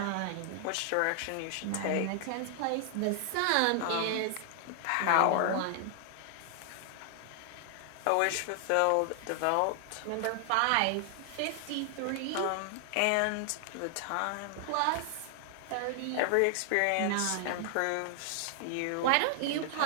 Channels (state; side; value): different; both; correlation 0.00